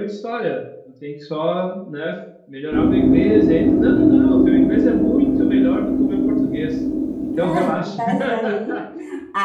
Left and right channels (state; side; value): identical; both; correlation 1.00